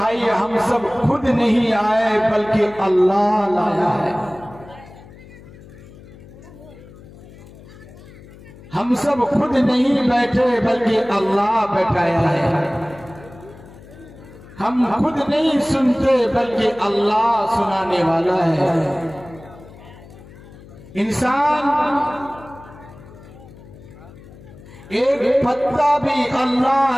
हम सब खुद नहीं आए बल्कि अल्लाह लाया है। हम सब खुद नहीं बैठे बल्कि अल्लाह बैठाया है। हम खुद नहीं सुनते बल्कि अल्लाह सुनाने वाला है। इंसान एक पत्ता भी अल्लाह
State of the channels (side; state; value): left; noise; hum, 20 dB below the sound